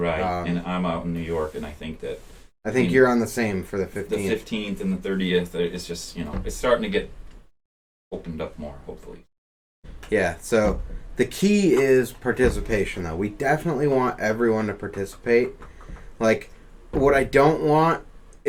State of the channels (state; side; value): identical; both; correlation 1.00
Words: And I'm out in New York, and I think you're on the same for the 15th. The 15th and the 30th. It's just, you know, it's starting to get opened up more, hopefully. Yeah. So the key is participation, though. We definitely want everyone to participate. Like, what I don't want